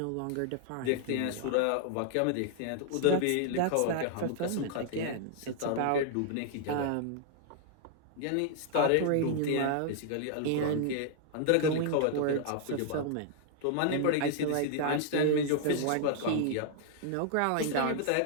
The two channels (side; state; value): both; different; correlation -0.01